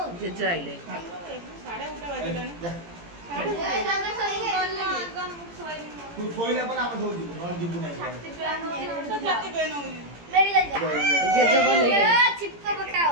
ଜେଜେ ଆଇଲେ। ଯା। ତୁ ଶୋଇଲା ପରେ ଆମେ ସବୁ ଯିବୁ ନହେଲେ ଯିବୁ ନାହିଁ ଜେଜେ କଣ ନେଇକି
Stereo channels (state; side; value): late; left; 17 ms